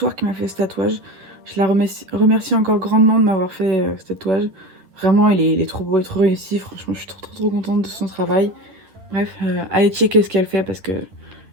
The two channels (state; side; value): late; left; 11 ms